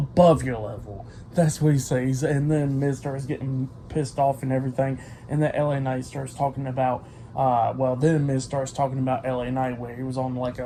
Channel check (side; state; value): both; identical; correlation 1.00